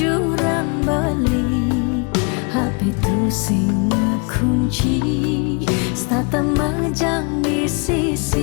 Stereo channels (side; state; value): right; quieter; 33.7 dB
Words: beli Happy tu sing kunci stata majang di